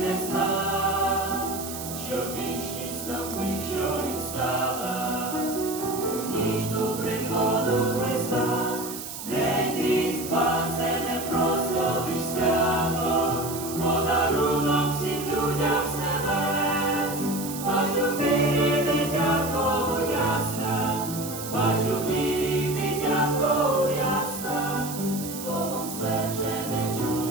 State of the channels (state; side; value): noise; right; hiss, 9 dB below the sound